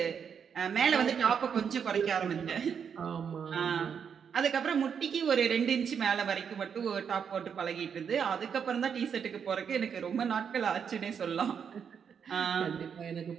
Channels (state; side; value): quieter; left; 7.2 dB